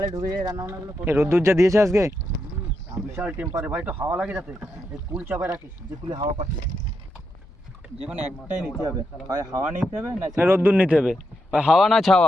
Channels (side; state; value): both; normal; correlation 0.83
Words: ঢুকে যায়, রান্না বান্নাগুলো এই রোদ্দুর যা দিয়েছে আজকে, বিশাল টেম্পারে ভাই, তো হাওয়া লাগে যাতে এই কুল চাপায় রাখিস, যে কুলে হাওয়া পাচ্ছে। যে কোনো একটাই নিতে হবে, হয় হাওয়া নিতে হবে না রোদ্দুর নিতে হবে। হাওয়া না